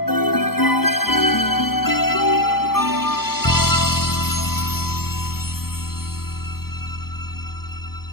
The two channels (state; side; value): late; right; 0.94 ms